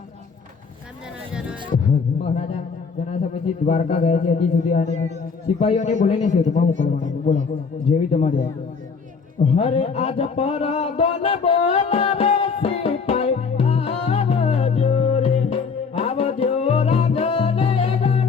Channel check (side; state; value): right; quieter; 5.3 dB